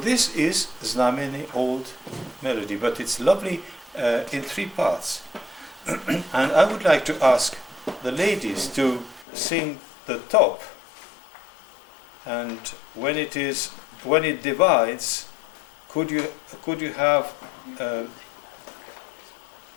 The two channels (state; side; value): drops out; right; at 9.2 s